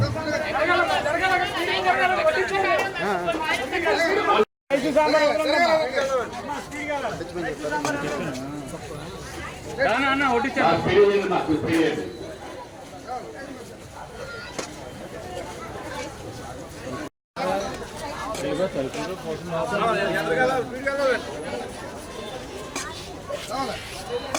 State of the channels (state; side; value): identical; both; correlation 1.00